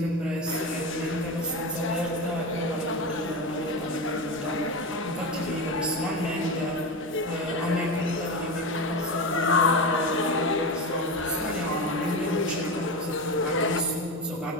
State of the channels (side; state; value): both; normal; correlation 0.21